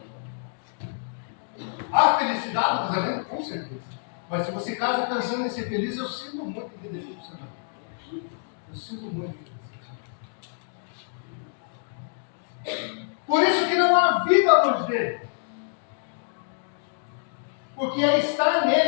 Há felicidade no casamento? Com certeza. Mas se você casa pensando em ser feliz, eu sinto muito que decepcionar. Eu sinto muito que decepcionar. Por isso que não há vida longe dele. Porque é estar nele,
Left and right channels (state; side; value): silent; right; digital silence